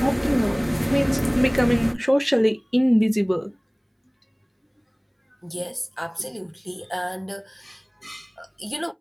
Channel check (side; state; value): both; identical; correlation 1.00